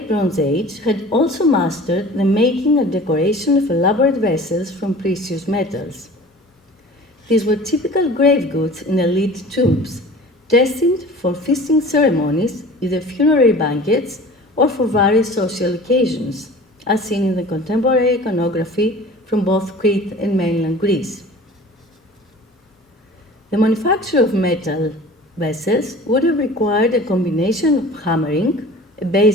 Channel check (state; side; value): normal; both; correlation 0.42